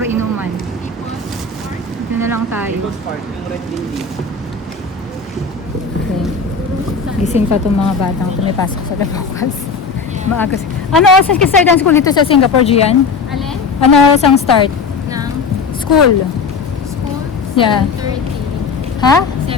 inuman. Dito na lang tayo. People's Park, yung red building. Okay. Gising pa itong mga batang ito. May pasok sa bukas. Maaga. Ano oras ang start ang school dito sa Singapore, Gian? Alin? Ano oras ang start? Ng School. school? Yeah. 7:30. Ha?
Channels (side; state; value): right; quieter; 4.8 dB